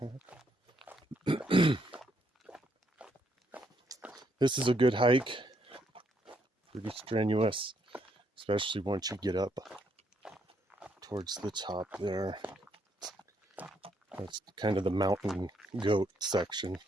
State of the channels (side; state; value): both; normal; correlation 0.74